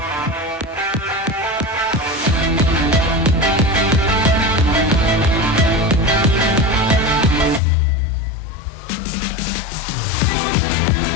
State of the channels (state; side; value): drops out; right; at 7.6 s